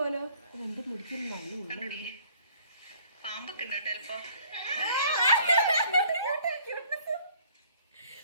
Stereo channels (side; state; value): both; inverted; correlation -0.57